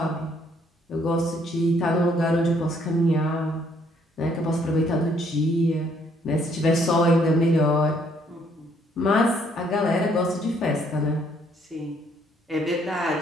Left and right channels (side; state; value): both; normal; correlation 0.67